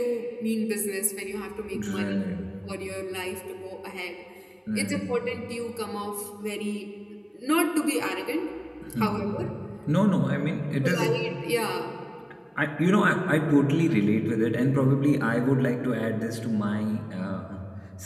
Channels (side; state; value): both; identical; correlation 1.00